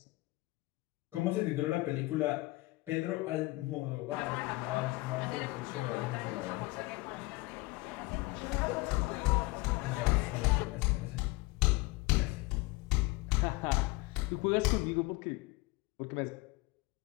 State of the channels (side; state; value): right; quieter; 22.5 dB